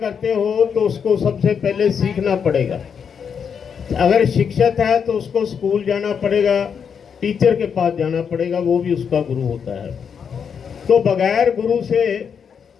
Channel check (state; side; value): quieter; right; 7.0 dB